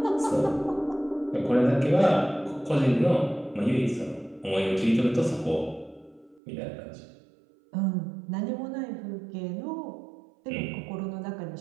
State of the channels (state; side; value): drops out; left; at 6.4 s